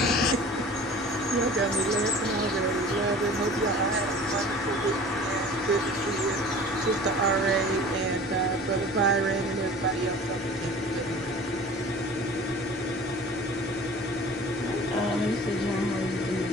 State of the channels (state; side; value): normal; both; correlation 0.43